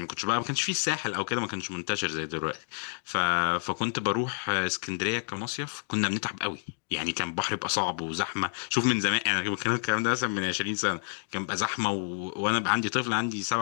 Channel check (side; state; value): right; silent; digital silence